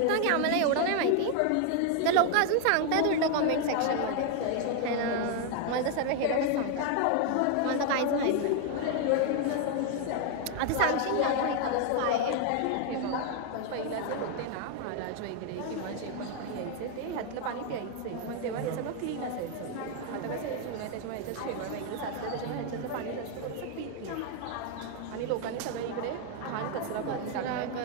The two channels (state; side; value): different; both; correlation 0.01